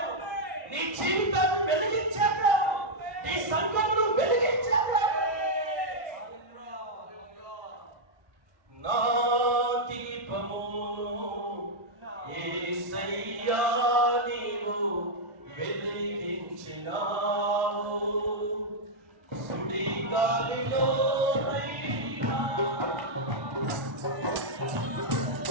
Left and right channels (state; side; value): late; left; 1.5 ms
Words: నీ జీవితాన్ని వెలిగించే దేవుడు, నీ సంఘమును వెలిగించే దేవుడు. నా దీపము యేసయ్యా నీవు వెలిగించినావు, సుడి గాలిలో